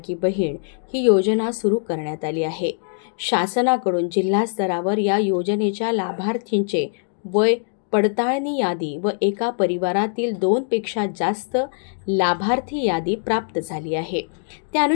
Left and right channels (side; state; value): right; silent; digital silence